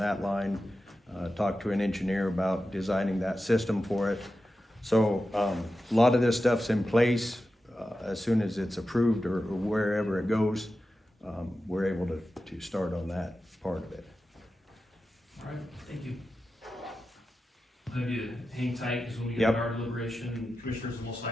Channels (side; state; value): both; normal; correlation 0.92